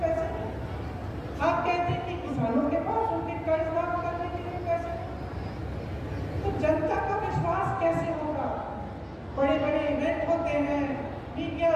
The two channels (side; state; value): both; identical; correlation 1.00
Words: पैसे नहीं। आप कहते हैं कि किसानों के पास उनके कर्ज माफ करने के लिए पैसे नहीं। तो जनता का विश्वास कैसे होगा? बड़े बड़े इवेंट होते हैं, मीडिया